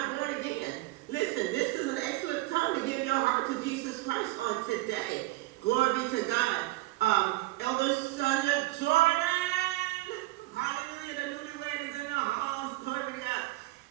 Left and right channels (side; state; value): left; quieter; 19.3 dB